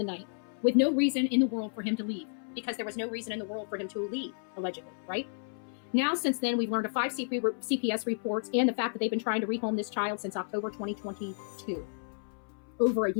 night with no reason in the world for him to leave, because there was no reason in the world for him to leave, allegedly, right? Now, since then, we've learned of 5 CPS reports and the fact that they've been trying to rehome this child since October 2022. Over a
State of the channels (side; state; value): right; silent; 57 dB below the other